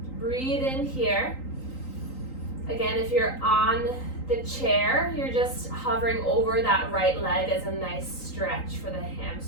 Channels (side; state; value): right; late; 3.8 ms